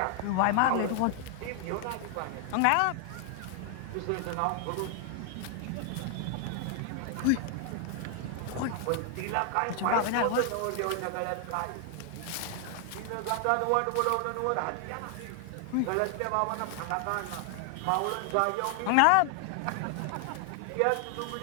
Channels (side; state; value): both; different; correlation 0.00